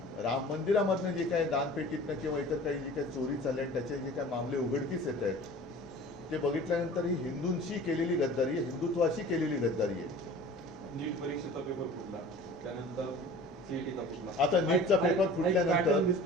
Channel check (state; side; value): normal; both; correlation 0.43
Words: राम मंदिरामधनं जे काय दानपेटीतनं किंवा इतर काही जी काही चोरी चालली आणि त्याचे जे काही मामले उघडकीस येत आहेत ते बघितल्यानंतर ही हिंदूंशी केलेली गद्दारी आहे, हिंदुत्वाशी केलेली गद्दारी आहे. नीट परीक्षेचा पेपर फुटला, त्यानंतर CETचा फुटला. आता नीटचा पेपर फुटल्यानंतर